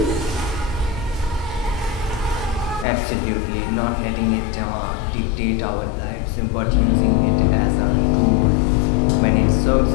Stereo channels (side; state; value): right; drops out; at 2.9 s